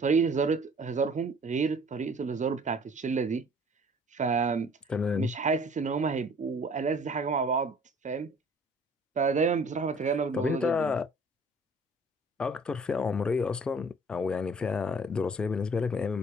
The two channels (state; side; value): normal; both; correlation 0.52